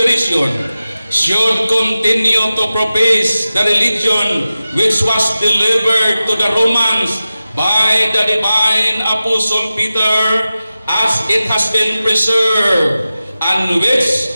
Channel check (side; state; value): both; inverted; correlation -0.95